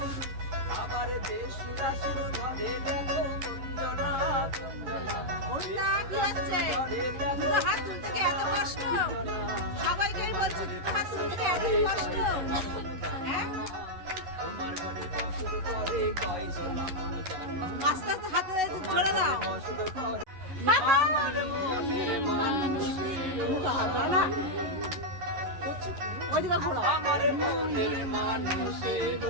আবার বেসুরাসুর ধরে দেখো কুঞ্জনা কুঞ্জনা ওটা কি হচ্ছে দুটো হাত তুলতে কি এত কষ্ট সবাইকেই বলছি দুটো হাত তুলতে এত কষ্ট হ্যাঁ তোমার ঘরে বসত করে কয়জন মন জানো আস্তে আস্তে হাতে ধরে দাও বসত করে আমার মনের মানুষের না ওইদিকে ঘোরো আমার মনের মানুষের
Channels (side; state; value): left; late; 11 ms